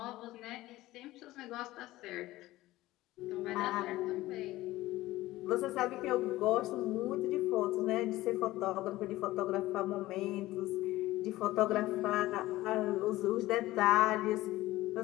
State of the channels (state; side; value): quieter; right; 17.0 dB